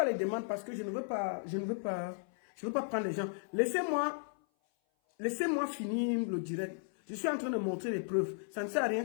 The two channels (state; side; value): silent; right; 54 dB below the other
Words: les demandes parce que je ne veux pas prendre les gens. Laissez-moi finir le direct. Je suis en train de montrer les preuves. Ça ne sert à